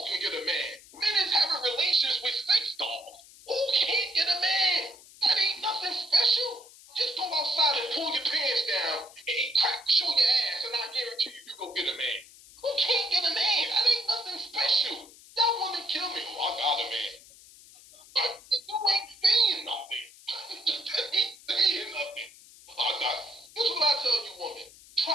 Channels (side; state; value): left; noise; hiss, 22 dB below the sound